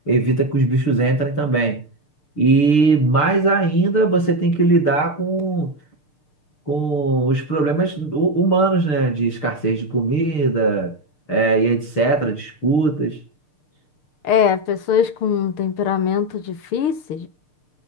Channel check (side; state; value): right; late; 6.7 ms